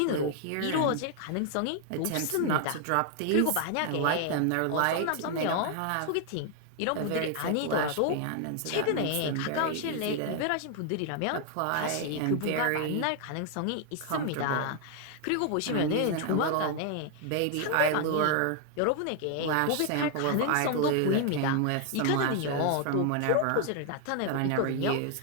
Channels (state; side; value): different; both; correlation 0.00